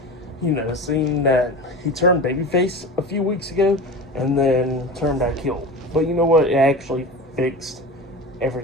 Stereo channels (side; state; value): both; normal; correlation 0.30